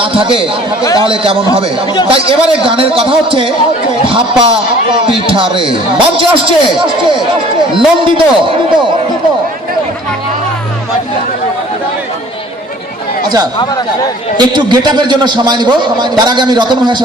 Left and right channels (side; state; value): both; normal; correlation 0.51